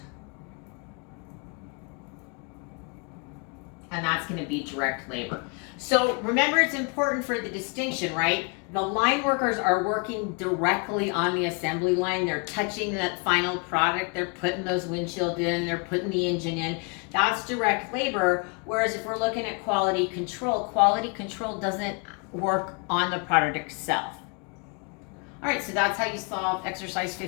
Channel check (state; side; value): quieter; right; 34.0 dB